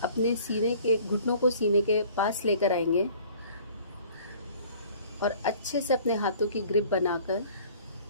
अपने सीने के घुटनों को सीने के पास लेकर आएंगे और अच्छे से अपने हाथों की ग्रिप बनाकर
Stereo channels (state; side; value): inverted; both; correlation -0.51